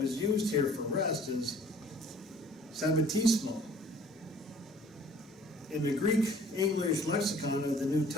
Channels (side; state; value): both; normal; correlation 0.53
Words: used here for rest is sabbatismo. In the Greek-English lexicon of the New